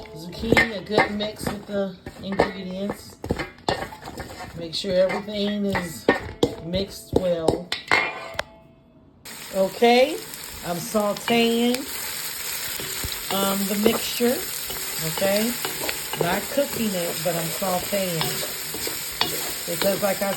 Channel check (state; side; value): identical; both; correlation 1.00